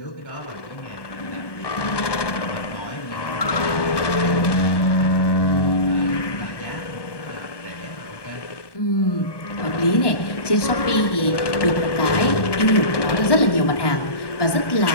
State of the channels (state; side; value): late; right; 1.1 ms